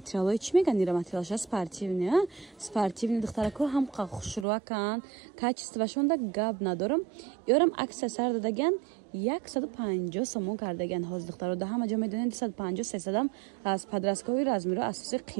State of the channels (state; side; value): drops out; left; at 4.5 s